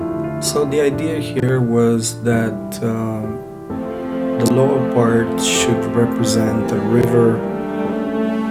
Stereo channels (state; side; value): identical; both; correlation 1.00